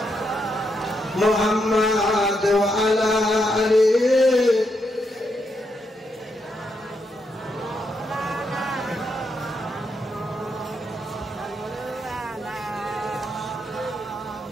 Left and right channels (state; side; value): normal; both; correlation 0.80